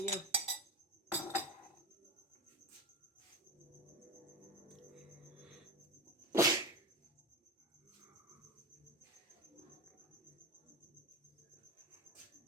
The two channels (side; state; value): both; normal; correlation 0.22